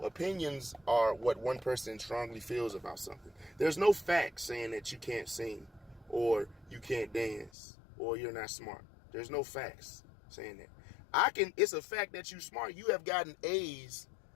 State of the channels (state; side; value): drops out; right; at 7.5 s